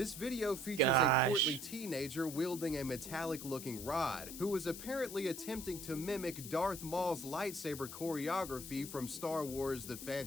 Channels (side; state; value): left; noise; hiss, 10 dB below the sound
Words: video features a portly teenager wielding a metallic-looking rod, who was apparently attempting to mimic Darth Maul's lightsaber choreography from Star Wars The